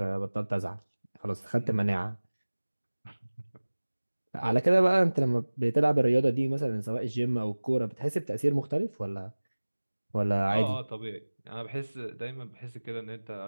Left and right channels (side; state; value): both; inverted; correlation -1.00